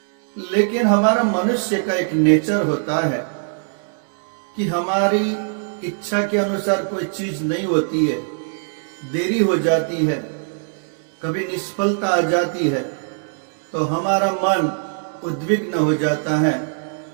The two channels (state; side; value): silent; left; digital silence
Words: लेकिन हमारा मनुष्य का एक नेचर होता है कि हमारी इच्छा के अनुसार कोई चीज नहीं होती है, देरी हो जाती है, कभी निष्फलता आ जाती है तो हमारा मन उद्विग्न हो जाता है,